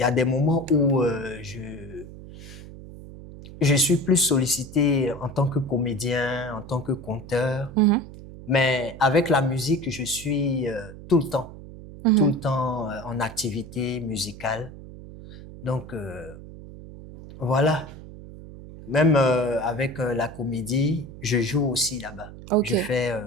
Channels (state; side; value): noise; right; hum, 15 dB below the sound